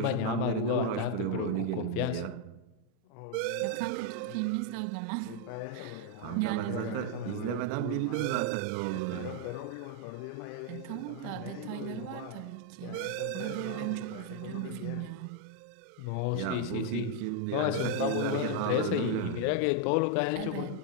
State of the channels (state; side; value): different; both; correlation 0.01